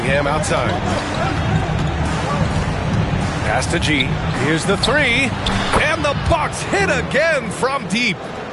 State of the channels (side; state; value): both; identical; correlation 1.00